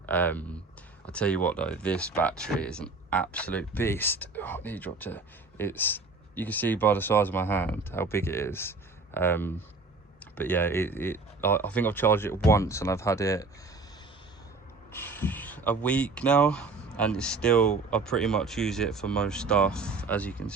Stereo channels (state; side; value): quieter; left; 3.8 dB